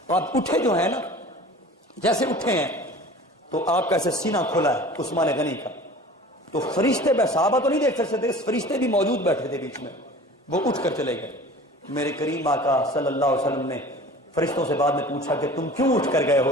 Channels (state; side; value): normal; both; correlation 0.42